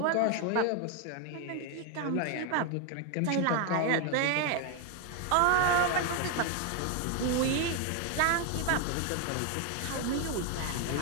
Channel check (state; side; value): different; both; correlation 0.01